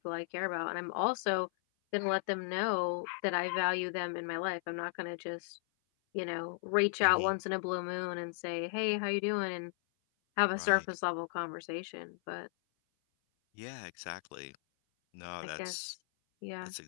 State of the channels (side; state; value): right; silent; 54 dB below the other